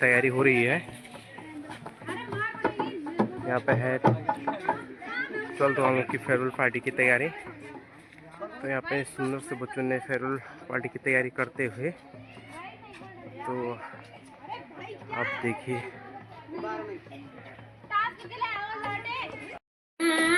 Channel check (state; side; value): identical; both; correlation 1.00